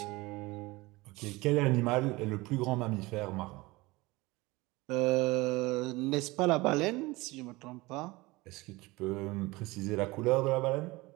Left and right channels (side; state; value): left; quieter; 21.9 dB